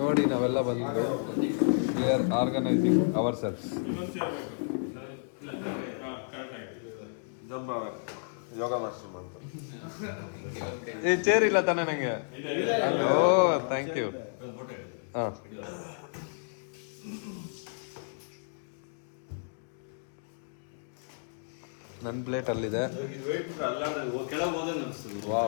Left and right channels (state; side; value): silent; right; digital silence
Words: ನಾವೆಲ್ಲ ಬಂದಿದ್ದು we are organising ourselves. Yoga master ಮಾಡ್ತಾರೆ. ಈ ಚೇರ್ ಇಲ್ಲ ತಾನೇ ನಂಗೆ? Oh thank you. ಹಾಂ ನನ್ನ ಪ್ಲೇಟ್ ಅಲ್ಲಿದೆ.